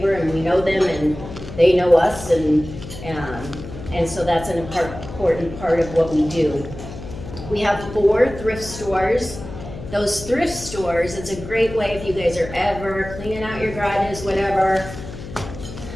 and we know them and they know us, and so that's an important part of what we do. We have 4 thrift stores. Those thrift stores, it's a great way if you guys are ever cleaning out your garages, whatever.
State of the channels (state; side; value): noise; left; hum, 12 dB below the sound